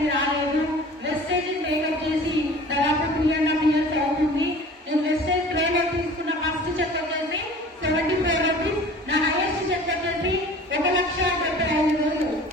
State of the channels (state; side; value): normal; both; correlation 0.44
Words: రాలేదు. వెస్టేజ్ మేకప్ చేసి దాదాపు 3.5 years అవుతుంది. నేను వెస్టేజ్ ట్రైన్ తీసుకున్న ఫస్ట్ చెక్ వచ్చేసి 75 rupees. నా హైయెస్ట్ చెక్ వచ్చేసి 1,75,000.